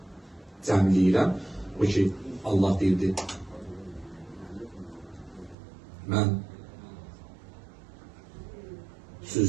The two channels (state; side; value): drops out; left; at 5.6 s